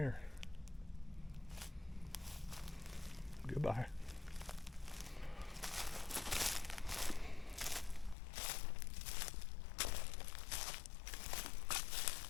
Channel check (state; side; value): drops out; right; at 8.2 s